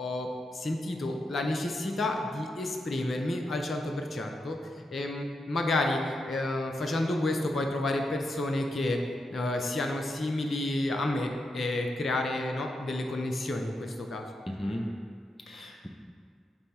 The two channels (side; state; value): both; normal; correlation 0.85